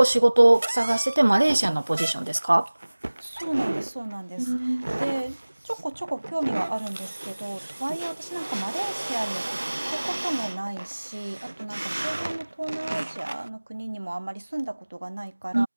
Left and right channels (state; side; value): inverted; both; correlation -1.00